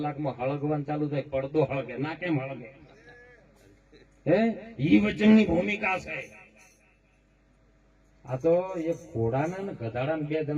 હળગવાનું ચાલુ થાય. પડદો હળગે ના, કેમ હળગે? હે, ઈ વચનની ભૂમિકા છે. આ તો એક ઘોડાના ને ગધાડા ને 2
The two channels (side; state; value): both; identical; correlation 1.00